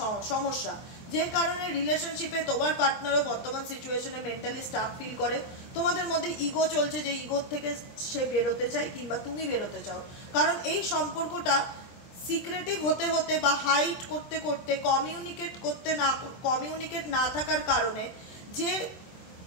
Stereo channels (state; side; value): late; right; 23 ms